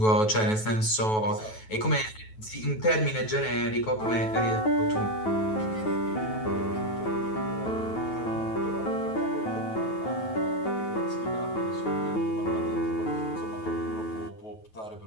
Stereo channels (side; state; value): right; late; 9.3 ms